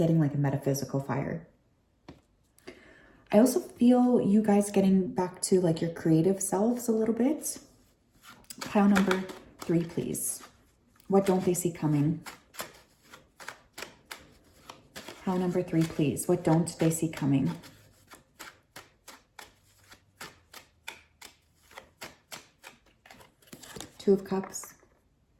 like a metaphysical fire. I also feel you guys getting back to like your creative selves a little bit. Pile number 3, please. What don't they see coming? Pile number 3, please. What don't they see coming? Two of Cups.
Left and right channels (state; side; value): identical; both; correlation 1.00